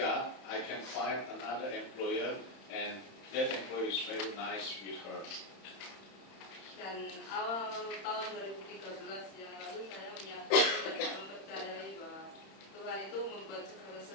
I can find another employer, and that employer is very nice with her. Dan awal tahun 2013 yang lalu saya menyadari dan mempercayai bahwa Tuhan itu membuat segala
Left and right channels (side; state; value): right; late; 31 ms